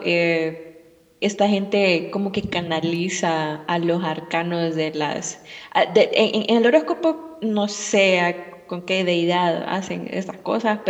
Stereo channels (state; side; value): identical; both; correlation 1.00